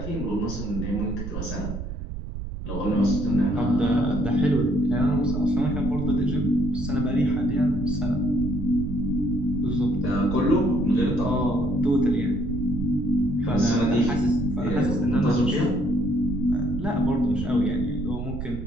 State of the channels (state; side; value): noise; right; rumble, 7 dB below the sound